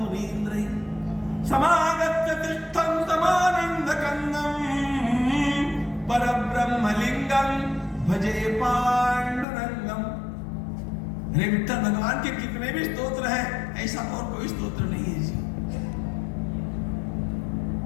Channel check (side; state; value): right; drops out; at 9.5 s